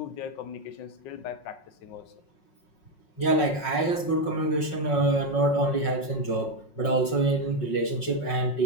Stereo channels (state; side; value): late; right; 5.5 ms